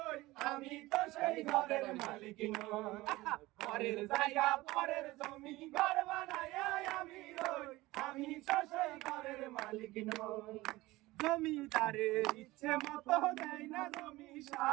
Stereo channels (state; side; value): quieter; left; 19.3 dB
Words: আমি তো সেই ঘরের মালিক নই। ঘরের জায়গা পরের জমি, ঘর বানাইয়া আমি রই, আমি তো সেই ঘরের মালিক নই। জমিদারের ইচ্ছে মতো দেয় না জমি